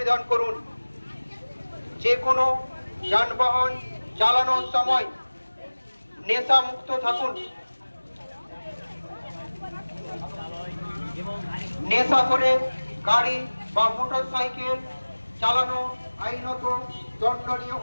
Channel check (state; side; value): inverted; both; correlation -1.00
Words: করুন। যে কোনো যানবাহন চালানোর সময় নেশা মুক্ত থাকুন। নেশা করে গাড়ি বা মোটর সাইকেল চালানো আইনত দণ্ডনীয়